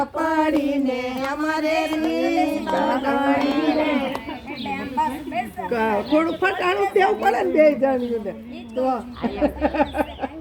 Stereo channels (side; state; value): both; identical; correlation 1.00